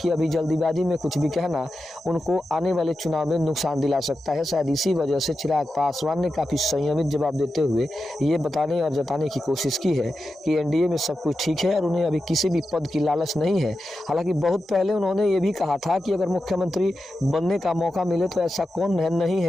अभी जल्दीबाजी में कुछ भी कहना उनको आने वाले चुनाव में नुकसान दिला सकता है। शायद इसी वजह से चिराग पासवान ने काफ़ी संयमित जवाब देते हुए ये बताने और जताने की कोशिश की है कि एनडीए में सब कुछ ठीक है और उन्हें अभी किसी भी पद की लालच नहीं है। हालांकि बहुत पहले उन्होंने ये भी कहा था कि अगर मुख्यमंत्री बनने का मौका मिले तो ऐसा कौन नहीं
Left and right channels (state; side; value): normal; both; correlation 0.90